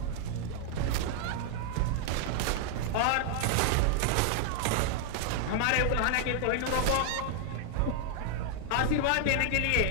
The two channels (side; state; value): both; different; correlation 0.00